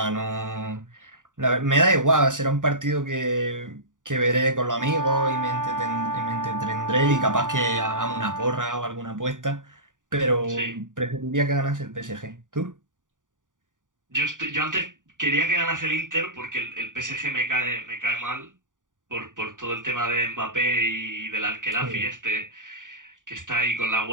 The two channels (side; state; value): left; late; 0.88 ms